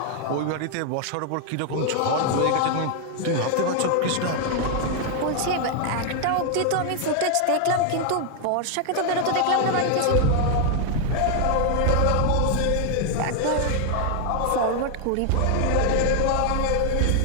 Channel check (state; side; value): different; both; correlation 0.00